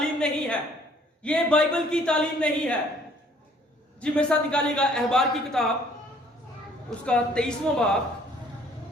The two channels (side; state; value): both; normal; correlation 0.59